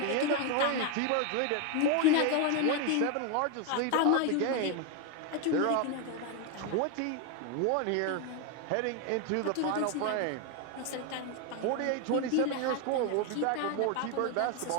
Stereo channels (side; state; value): both; different; correlation 0.01